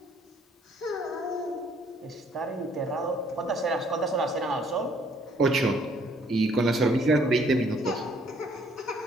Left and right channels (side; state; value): both; normal; correlation 0.63